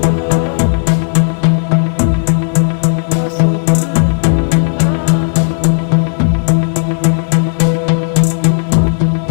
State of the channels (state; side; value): silent; right; 72 dB below the other